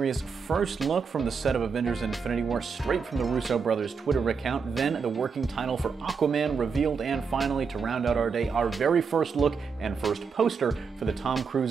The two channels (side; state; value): left; quieter; 5.5 dB